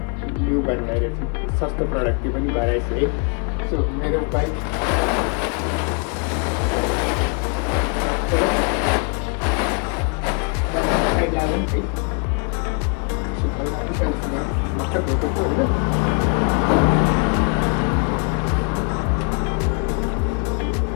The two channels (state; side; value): quieter; right; 35.1 dB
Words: ल्यु गर्न गइरहेको छौँ। सस्तो प्रडक्ट त्यो पनि घर आएछ है। सो मेरो बाइक साइड लागौँ है। हल्का पुसाइस गरौँ भर्खर धोएको छु होइन।